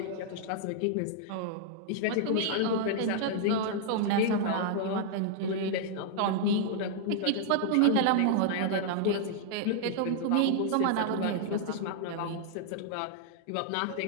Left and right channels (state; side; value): different; both; correlation -0.01